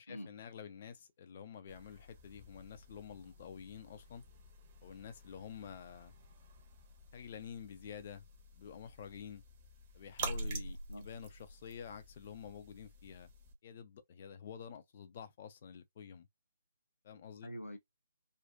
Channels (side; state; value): both; inverted; correlation -0.67